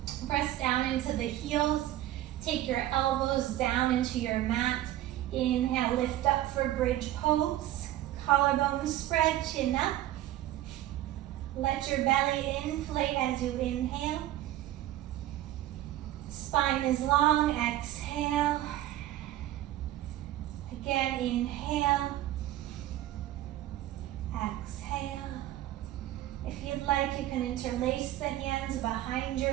Press down into the heels. Take your elbows down into your mat. Inhale, lift up for bridge pose. Collarbones spread, chin up. Let your belly inflate as you inhale. Spine is long, exhale. Again, inhale. Exhale. If you'd like, you can interlace the hands behind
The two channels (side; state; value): left; quieter; 14.0 dB